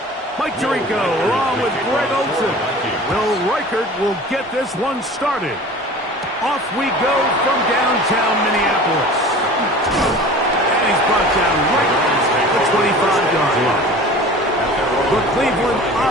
Mike Tirico along with Greg Olsen. Will Reichert will get this one started. Off we go from downtown Minneapolis. And he's brought down right at the 25-yard line. The Cleveland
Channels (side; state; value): both; normal; correlation 0.41